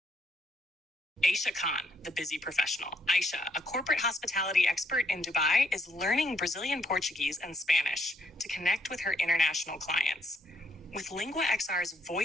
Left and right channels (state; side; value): normal; both; correlation 0.71